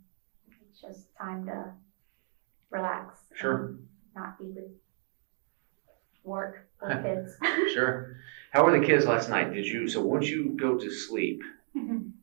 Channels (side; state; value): left; silent; 55 dB below the other